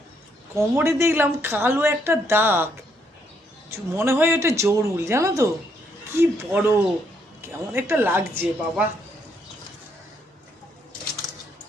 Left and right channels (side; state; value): both; normal; correlation 0.73